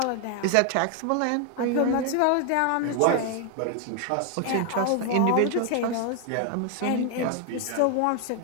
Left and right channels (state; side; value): different; both; correlation 0.00